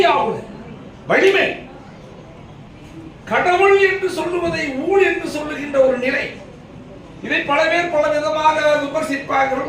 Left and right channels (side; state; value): both; identical; correlation 1.00